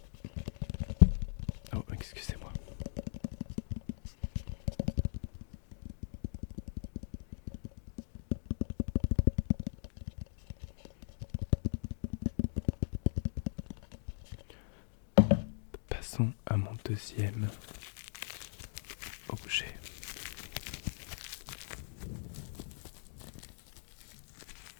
Oh, excusez-moi. Passons à mon deuxième objet.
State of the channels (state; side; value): silent; right; digital silence